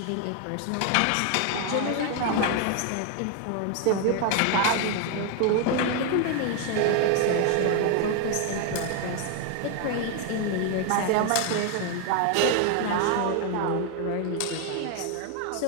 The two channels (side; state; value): both; different; correlation 0.00